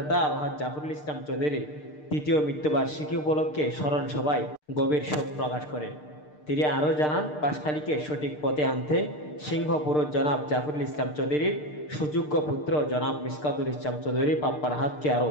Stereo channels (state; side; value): late; right; 6.6 ms